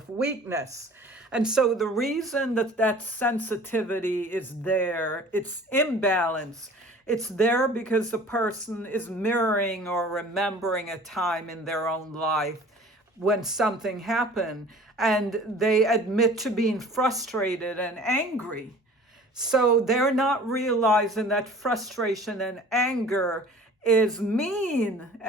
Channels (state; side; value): normal; both; correlation 0.46